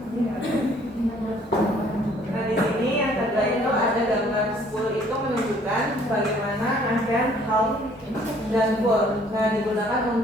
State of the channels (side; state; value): both; normal; correlation 0.59